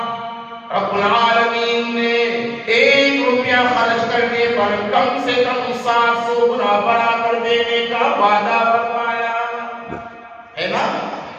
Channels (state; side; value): identical; both; correlation 1.00